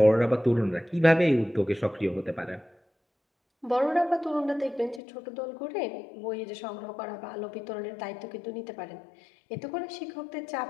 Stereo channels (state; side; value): drops out; right; at 5.0 s